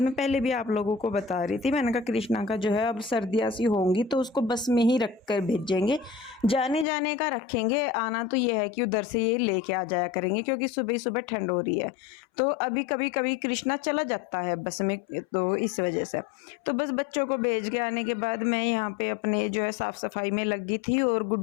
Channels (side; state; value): right; drops out; at 6.9 s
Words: मैं पहले भी आप लोगों को बता रही थी, मैंने कहा कृष्णा का जो है अब सर्दियाँ सी होंगी तो उसको बस में ही रख कर भेजेंगे, जाने जाने का रखेंगे, आना तो ये है कि उधर से ये लेके आ जाया करेंगे, क्योंकि सुबह सुबह ठंड हो रही है। तो अभी कभी कभी कृष्णा चला जाता है बस में, तो इस वजह से तो बस बच्चों को भेज के आने के बाद मैं यहाँ पे अपने जो है साफ़ सफाई में लगी थी, और